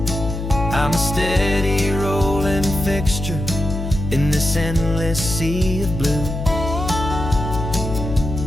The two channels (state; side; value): noise; left; hum, 5 dB below the sound